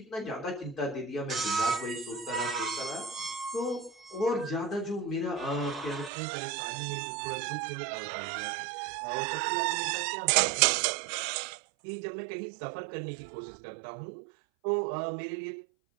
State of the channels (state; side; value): drops out; left; at 6.1 s